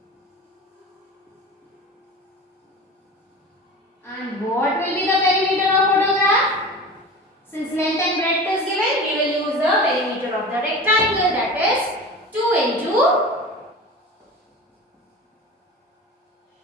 And what will be the perimeter of photograph? Since length and breadth is given, we will use the perimeter of the rectangle, that is 2 into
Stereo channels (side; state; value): both; normal; correlation 0.34